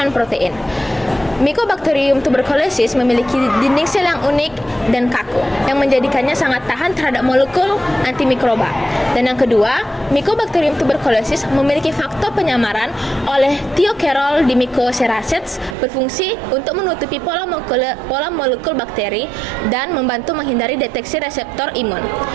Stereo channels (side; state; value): left; drops out; at 15.8 s